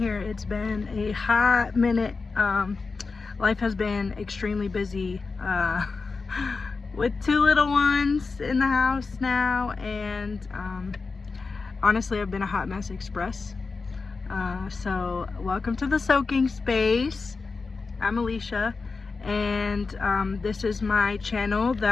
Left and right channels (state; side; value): quieter; right; 4.3 dB